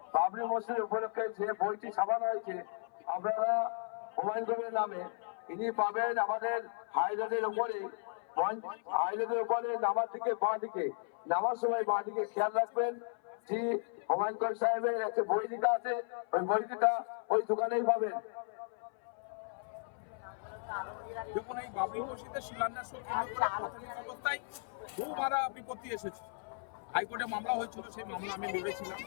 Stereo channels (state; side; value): silent; right; 54 dB below the other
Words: বাবরি মসজিদ উপলক্ষে যে বইটি ছাপানো হয়েছে আপনারা হুমায়ুন কবিরের নামে, ইনি পাবেন আমাদের হাইরোডের উপরে, হাইরোডের উপরে নামার দিকে বাঁ দিকে, নামার সময় বাঁ দিকে খেয়াল রাখবেন যে হুমায়ুন কবির সাহেবের একটা বই লেখা আছে, ওই বইটা ওই দোকানেই পাবেন। দেখুন, এই বাবরি মসজিদের শিলান্যাস কেন্দ্র করে প্রাথমিক অবস্থায় বহু বাধা বিপত্তি এসেছে। হাইকোর্টে মামলা হয়েছিল, সেই মামলা আমি লড়েছিলাম।